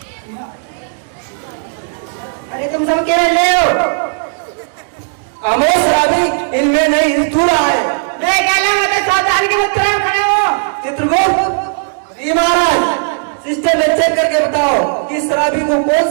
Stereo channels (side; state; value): left; silent; digital silence